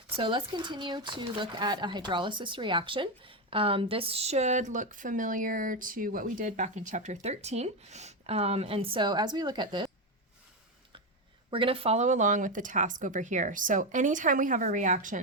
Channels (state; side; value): normal; both; correlation 0.10